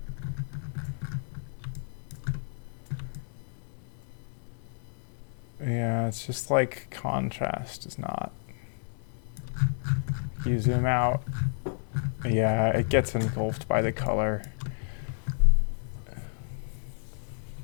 Yeah, it's just like contrast is not. You zoom out. Yeah, it gets engulfed by the color.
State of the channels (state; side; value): silent; right; digital silence